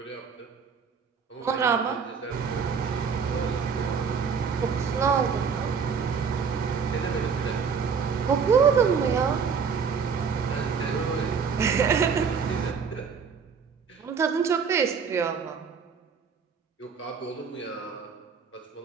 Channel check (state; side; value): quieter; left; 6.0 dB